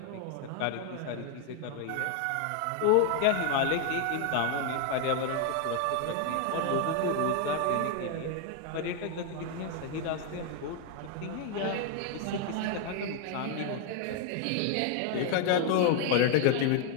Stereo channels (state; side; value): different; both; correlation 0.01